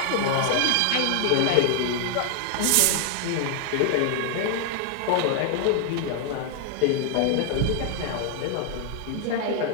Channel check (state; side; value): different; both; correlation 0.00